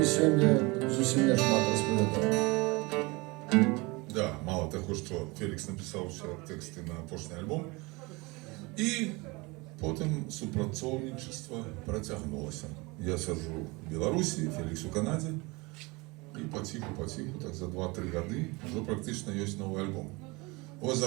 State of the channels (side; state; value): left; quieter; 25.3 dB